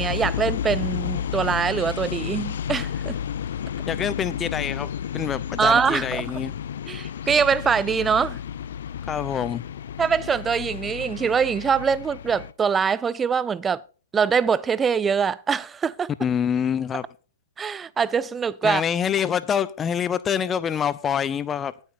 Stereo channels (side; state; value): both; normal; correlation 0.60